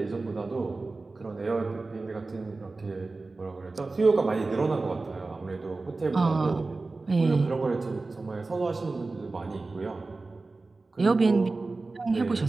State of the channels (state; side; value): quieter; left; 3.5 dB